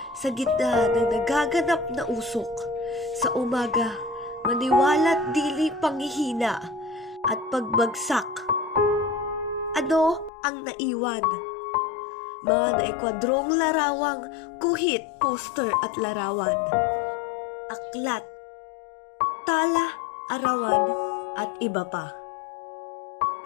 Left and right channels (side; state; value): right; drops out; at 10.3 s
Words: sa gitna ng nagaganap na usok, sa umaga, maniwala't dili panghihina at pagbagsak. Ano ang naiwan? Mga naikwadrong larawang, guhit, poster at larawan. Aklat, tala, arawan at iba pa.